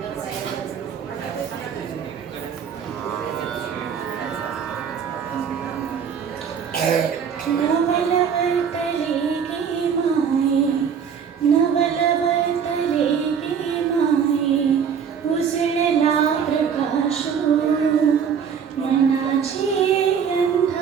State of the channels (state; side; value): quieter; left; 7.2 dB